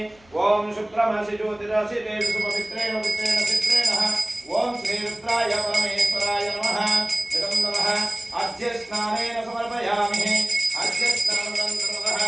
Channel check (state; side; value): noise; left; hum, 30 dB below the sound